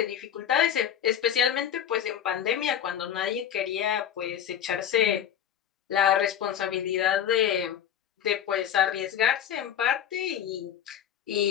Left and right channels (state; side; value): quieter; right; 9.6 dB